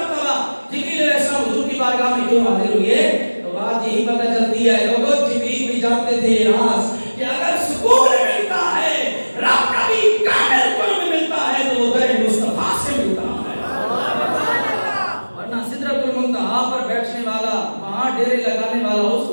جبریل علیہ السلام حضور کی بارگاہ میں کیوں حاضر ہوئے؟ تو بات یہی پتہ چلتی ہے لوگوں، جبریل بھی جانتے تھے یہ راز کہ اگر سکون ملتا ہے، رب کا بھی کامل قرب ملتا ہے تو وہ در مصطفیٰ سے ملتا ہے، ورنہ سدرۃ المنتہا پر بیٹھنے والا، وہاں ڈیرے لگانے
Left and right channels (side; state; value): both; inverted; correlation -1.00